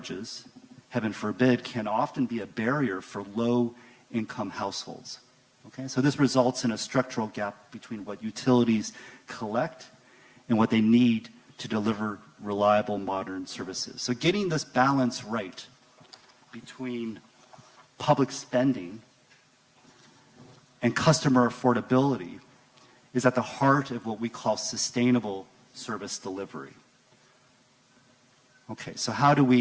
heaven forbid, can often be a barrier for low-income households. Okay? So this results in a structural gap between what utilities collect and what they need to deliver reliable, modern services. So getting this balance right between public spending and customer affordability is at the heart of what we call sustainable service delivery. Okay, so how do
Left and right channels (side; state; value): both; identical; correlation 1.00